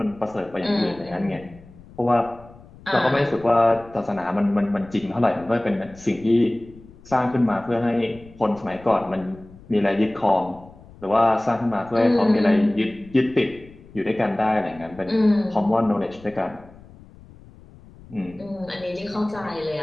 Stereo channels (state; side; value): noise; left; rumble, 22 dB below the sound